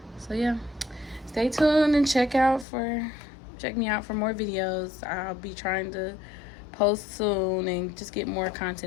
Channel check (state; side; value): drops out; right; at 2.7 s